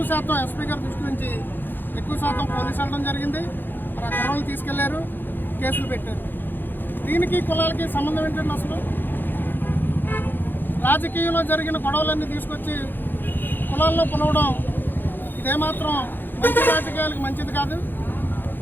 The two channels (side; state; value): right; late; 0.094 ms